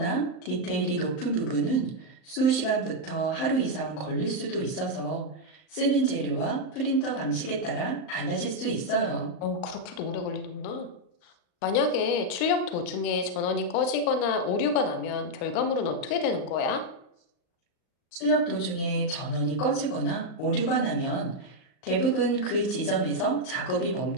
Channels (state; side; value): late; right; 38 ms